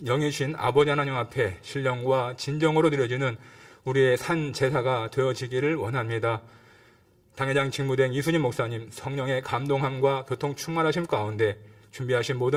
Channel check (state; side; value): identical; both; correlation 1.00